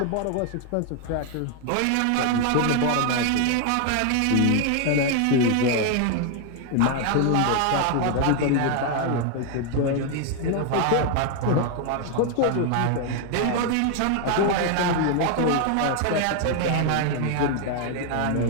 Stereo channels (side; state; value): both; different; correlation 0.01